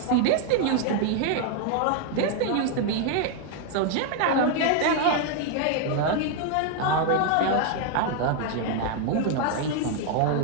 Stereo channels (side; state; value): both; different; correlation 0.00